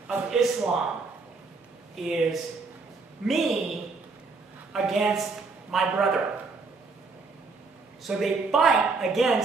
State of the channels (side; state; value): left; quieter; 4.1 dB